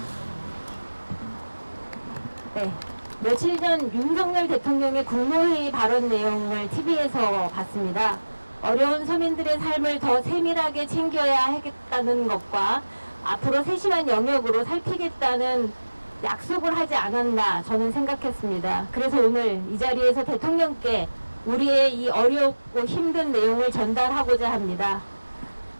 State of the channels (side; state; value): both; inverted; correlation -1.00